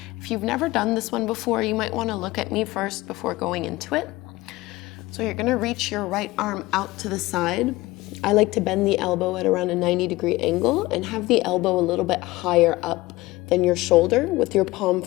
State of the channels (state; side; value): quieter; right; 19.6 dB